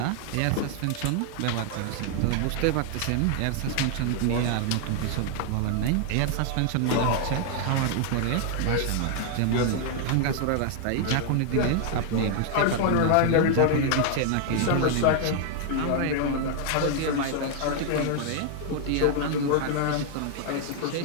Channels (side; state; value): both; different; correlation 0.00